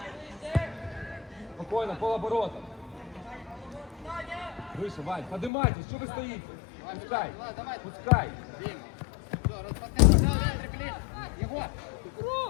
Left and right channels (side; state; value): right; drops out; at 5.5 s